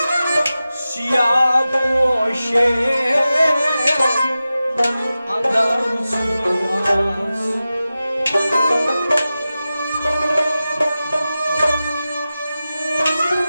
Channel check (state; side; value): inverted; both; correlation -0.94